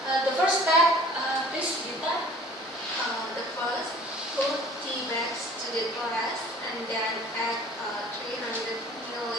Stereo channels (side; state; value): both; normal; correlation 0.50